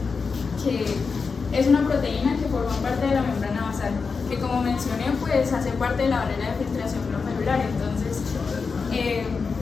que es una proteína que forma parte de la membrana basal, que como mencioné, pues hace parte de la barrera de filtración glomerular. Entonces,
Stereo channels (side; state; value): right; quieter; 5.0 dB